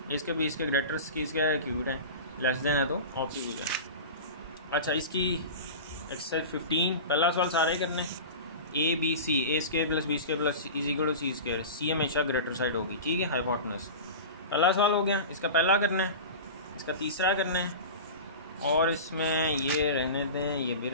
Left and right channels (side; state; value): both; inverted; correlation -0.31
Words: ए स्क्वायर बी स्क्वायर ग्रेटर सी स्क्वायर क्यूब है, लेस देन है तो ऑप्टिट्यूड है। अच्छा, इसकी एक्सरसाइज 15, पहला सवाल सारे करने, A B C, A square plus B square plus is equal to C square, C हमेशा ग्रेटर साइड होगी, ठीक है, हाइपोटेनस। पहला सवाल हो गया, इसका पहला करना है, इसका तीसरा करना है, और इसमें ये रहने दें, ये भी